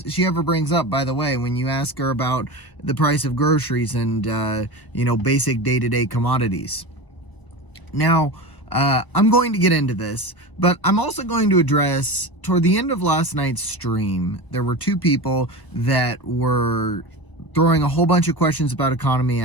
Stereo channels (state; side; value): late; right; 1.0 ms